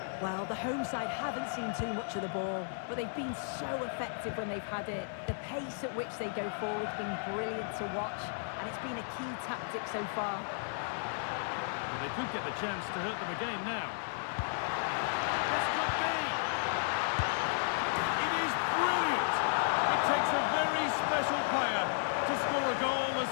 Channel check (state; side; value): silent; right; 55 dB below the other